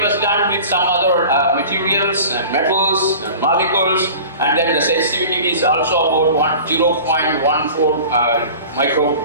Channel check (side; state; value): both; inverted; correlation -0.40